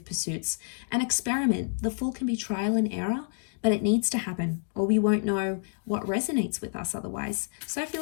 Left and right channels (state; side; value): silent; right; digital silence